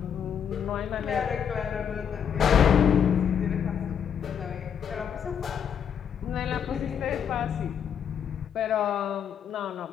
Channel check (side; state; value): right; quieter; 8.1 dB